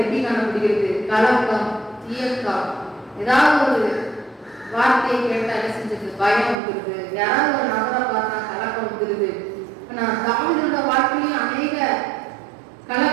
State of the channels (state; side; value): drops out; left; at 6.6 s